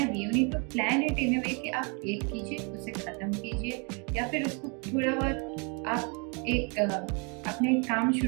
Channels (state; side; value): quieter; left; 34.1 dB